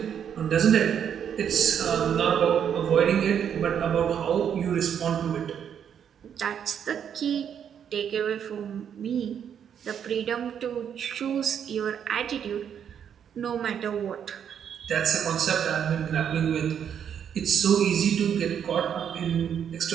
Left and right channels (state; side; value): quieter; left; 8.4 dB